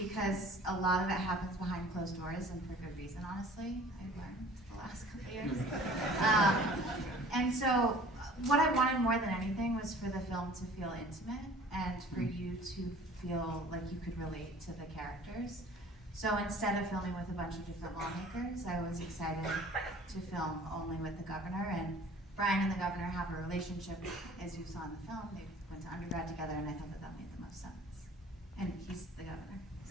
a lot of it happens behind closed doors and for good reason, honestly. I've learned the last couple of years. And so what I wanted more than anything was for the film to feel intimate and for you to feel like you could relate to the characters. So instead of filming with a bunch of different lawmakers, I was excited to film only with the governor. And Brian and the governor have a relationship, as you saw in the film. They went to undergrad together, and I thought that that made the most sense. And he's the governor.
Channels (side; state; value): both; normal; correlation 0.49